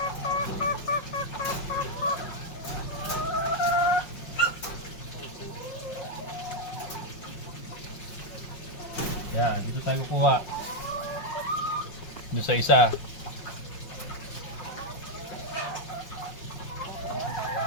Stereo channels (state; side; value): late; right; 5.5 ms